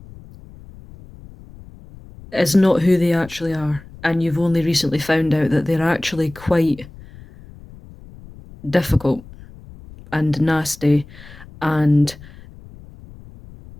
is not who they actually are, and you've only recently found out that they're actually quite difficult and nasty, and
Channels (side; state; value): left; noise; rumble, 20 dB below the sound